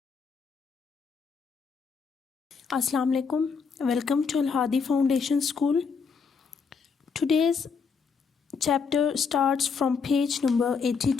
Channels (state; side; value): quieter; right; 5.6 dB